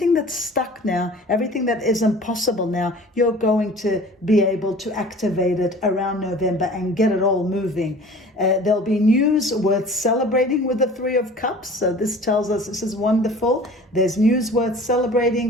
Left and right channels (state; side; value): normal; both; correlation 0.44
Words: that's stuck now, everything that isn't possible now, you're going to be able to activate it around November and get it all moving. There'll be news worth celebrating with the Three of Cups. So this tells us this is wonderful. There's news worth